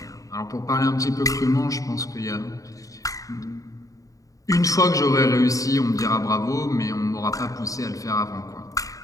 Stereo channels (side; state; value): right; late; 0.16 ms